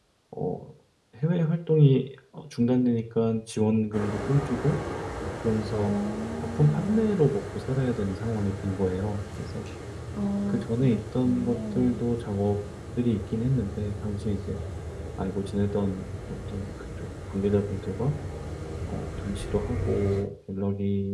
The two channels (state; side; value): identical; both; correlation 1.00